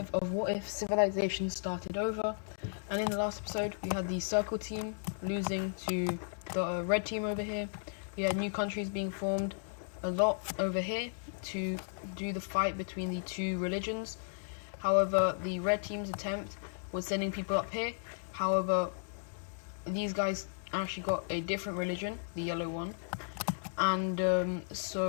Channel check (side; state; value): right; silent; digital silence